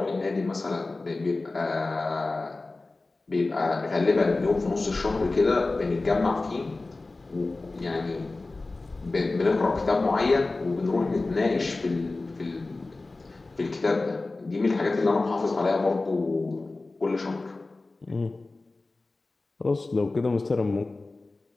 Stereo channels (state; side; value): quieter; right; 3.3 dB